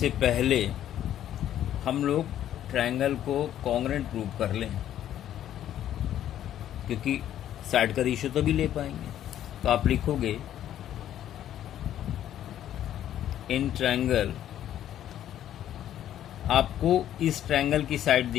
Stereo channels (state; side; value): quieter; right; 11.4 dB